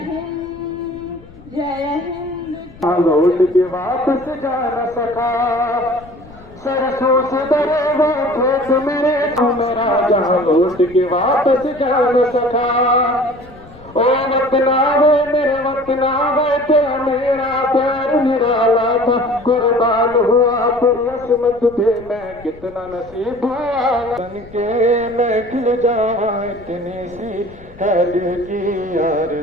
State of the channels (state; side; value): noise; left; rumble, 22 dB below the sound